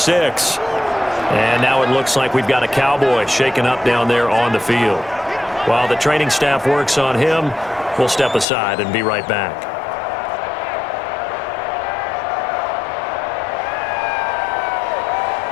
And now it looks like we've got a Cowboy shaken up down there on the field. While the training staff works on him, we'll step aside and be right back.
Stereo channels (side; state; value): right; drops out; at 8.5 s